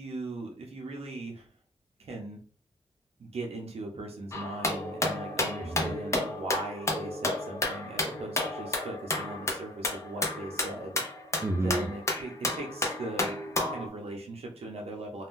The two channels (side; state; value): both; normal; correlation 0.40